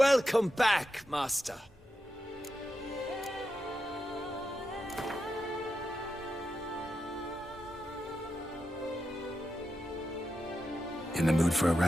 Welcome back, Master. In the mood for a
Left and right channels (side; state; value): both; normal; correlation 0.88